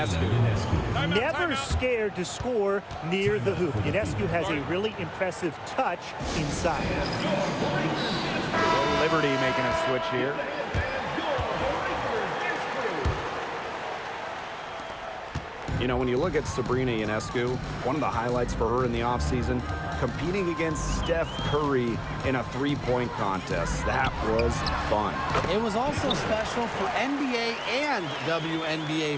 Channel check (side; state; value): both; identical; correlation 1.00